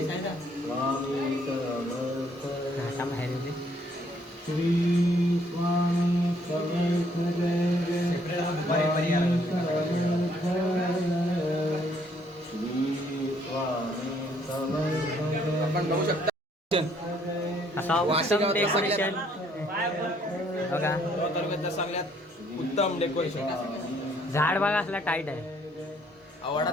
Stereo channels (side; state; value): both; normal; correlation 0.66